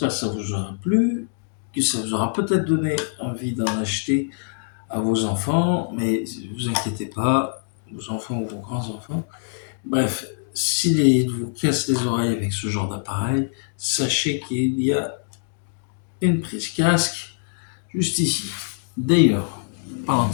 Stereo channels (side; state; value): right; silent; digital silence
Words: que ça vous aura plu, que ça vous aura peut-être donné envie d'en acheter à vos enfants, mais ne vous inquiétez pas, vos enfants ou vos grands-enfants. Bref, s'ils vous cassent les oreilles avec ce genre d'appareil, sachez qu'il y a une prise casque juste ici. D'ailleurs, parlant